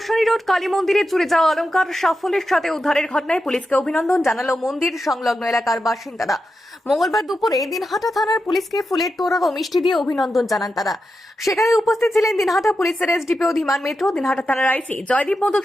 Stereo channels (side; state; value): both; normal; correlation 0.89